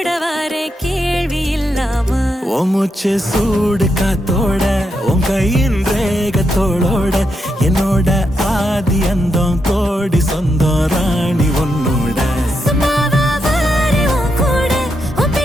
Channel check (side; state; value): both; normal; correlation 0.83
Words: வர கேள்வி இல்லாம மூச்சு சூடு காத்தோட உன் கையின் ரேகத்தோளோட என்னோட ஆதி அந்தம்